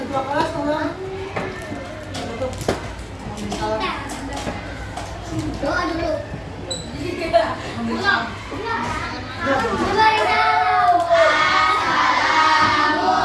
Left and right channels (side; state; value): both; identical; correlation 1.00